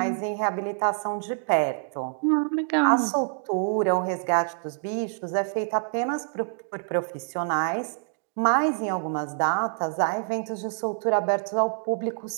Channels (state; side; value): silent; left; digital silence